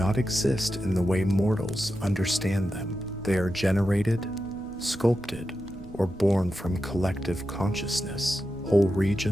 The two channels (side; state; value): right; noise; rumble, 23 dB below the sound